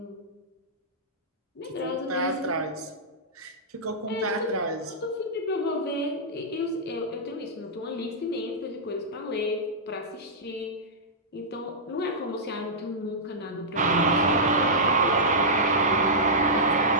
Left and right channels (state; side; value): normal; both; correlation -0.13